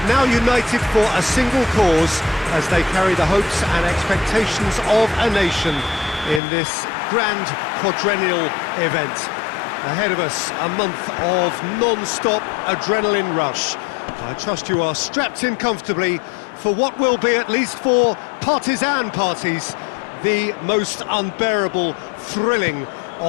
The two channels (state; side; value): drops out; right; at 6.4 s